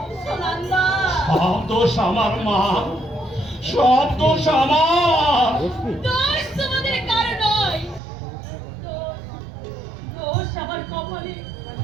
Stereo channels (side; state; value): left; drops out; at 8.0 s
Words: সুনন্দা, সব দোষ আমার মা, সব দোষ আমার। দোষ তোমাদের কারো নয়, দোষ আমার কপালে।